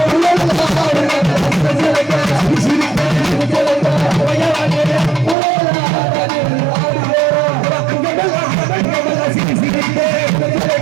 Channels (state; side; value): drops out; left; at 5.4 s